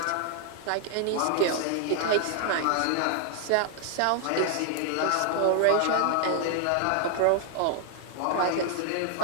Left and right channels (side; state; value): both; different; correlation 0.00